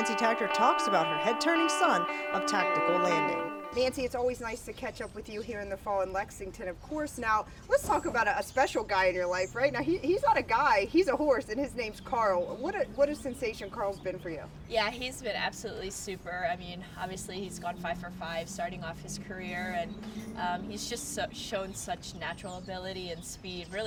Takter talks about her head-turning son of tactical landing. Nancy, it's always nice to catch up with you here in the fall in Lexington, of course. Now, let's talk about a special guy in your life, right? Now, he's not a guy, he's a horse, and his name's Karl. What a sensation Karl's been for you. Yeah, he's been absolutely super. I mean, obviously he's gone 5 for 5 starting off his career, and he's just shown such natural ability and speed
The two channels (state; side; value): identical; both; correlation 1.00